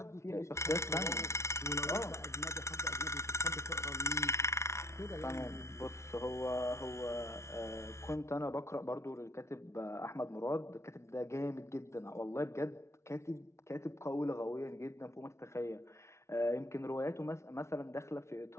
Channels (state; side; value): late; right; 0.13 ms